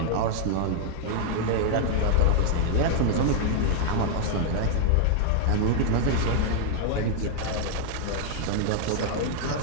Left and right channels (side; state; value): both; different; correlation 0.00